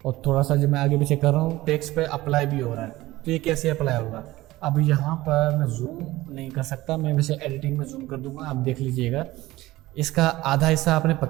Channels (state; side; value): quieter; left; 17.8 dB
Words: और थोड़ा सा जब मैं आगे पीछे कर रहा हूँ, टेक्स्ट पे अप्लाई भी हो रहा है, तो ये कैसे अप्लाई होगा। अब यहाँ पर मैं जूम नहीं कर सकता, मैं वैसे एडिटिंग में जूम कर दूंगा, आप देख लीजिएगा। इसका आधा हिस्सा आपने